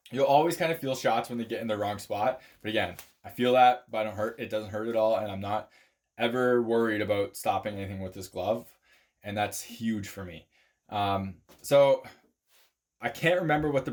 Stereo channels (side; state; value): both; identical; correlation 1.00